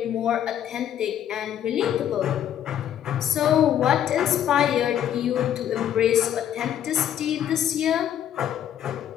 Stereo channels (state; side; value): quieter; right; 10.4 dB